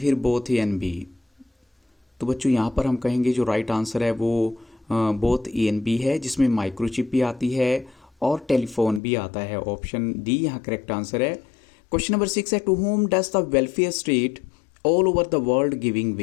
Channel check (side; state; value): right; drops out; at 9.0 s